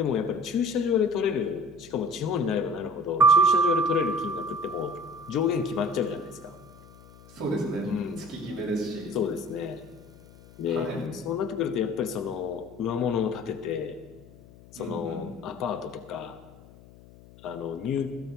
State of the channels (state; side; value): noise; left; hum, 22 dB below the sound